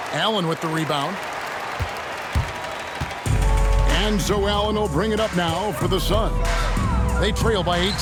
Allen with the rebound. And so Allen will bring it up now for the Suns. They trail by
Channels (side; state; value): both; identical; correlation 1.00